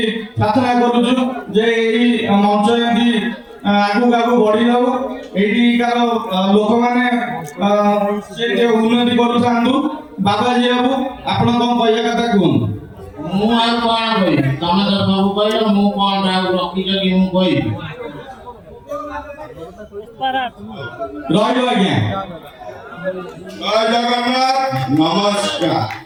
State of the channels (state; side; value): identical; both; correlation 1.00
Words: ପ୍ରାର୍ଥନା କରୁଛୁ ଯେ ଏହି ମଞ୍ଚ ଏମିତି ଆଗକୁ ଆଗକୁ ବଢି ଯାଉ, ଏଇଠିକାର ଲୋକମାନେ ସେ ଉନ୍ନତି କରୁଥାନ୍ତୁ। ବାବାଜୀ ବାବୁ ଆପଣ କଣ କହିବା କଥା କୁହନ୍ତୁ। ମୁଁ ଆଉ କଣ କହିବି, ତମେ ତ ସବୁ କହିଲ, ମୁଁ କଣ ଆଉ ରଖିଛ କି ମୁଁ କହିବି। ରହିବ ଆଜ୍ଞା। ଜୟ ଜଗନ୍ନାଥ, ନମସ୍କାର।